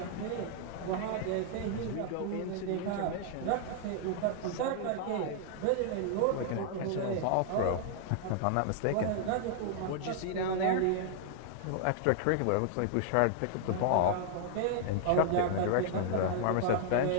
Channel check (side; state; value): both; different; correlation -0.01